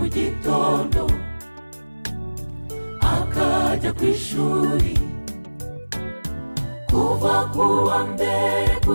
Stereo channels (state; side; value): inverted; both; correlation -1.00